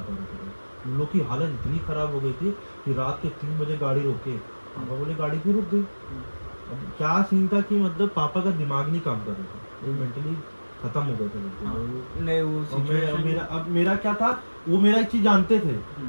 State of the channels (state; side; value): inverted; both; correlation -1.00